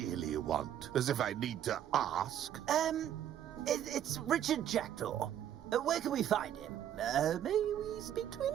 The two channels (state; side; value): quieter; left; 10.6 dB